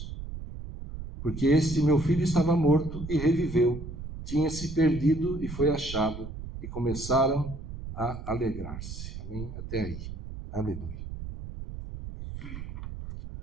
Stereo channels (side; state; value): right; noise; rumble, 9 dB below the sound